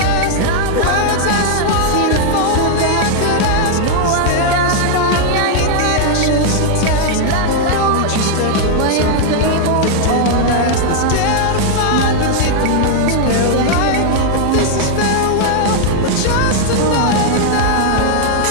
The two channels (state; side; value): different; both; correlation -0.01